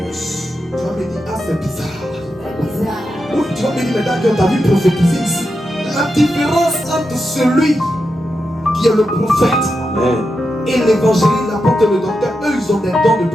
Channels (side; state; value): both; normal; correlation 0.87